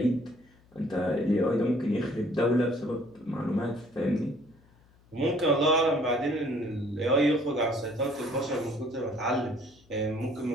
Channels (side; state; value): left; noise; hum, 30 dB below the sound